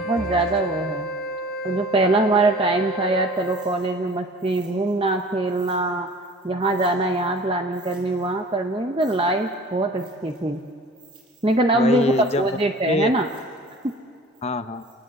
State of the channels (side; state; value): both; normal; correlation 0.45